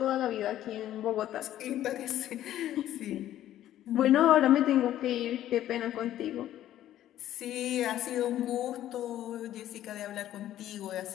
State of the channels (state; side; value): quieter; right; 12.6 dB